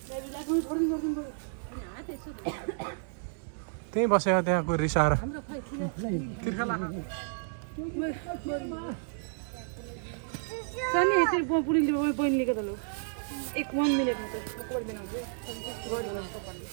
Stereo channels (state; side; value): silent; left; digital silence